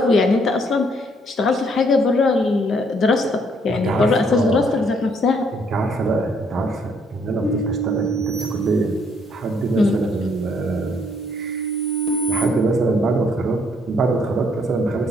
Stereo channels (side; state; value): both; normal; correlation 0.67